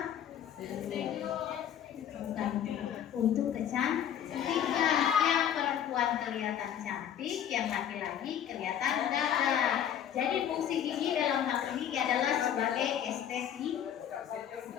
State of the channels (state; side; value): quieter; right; 9.7 dB